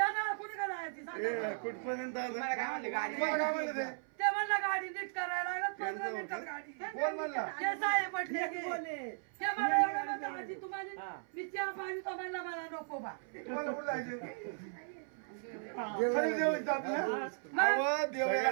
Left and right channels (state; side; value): silent; left; 53 dB below the other